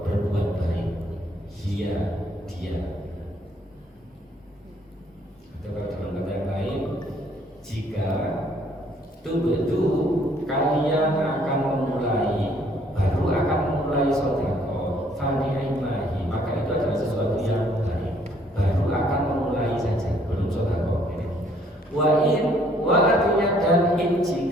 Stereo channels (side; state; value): both; normal; correlation 0.63